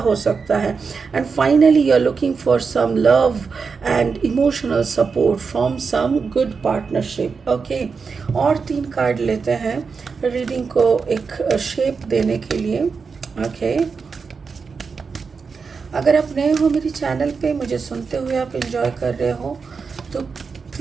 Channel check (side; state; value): left; quieter; 5.2 dB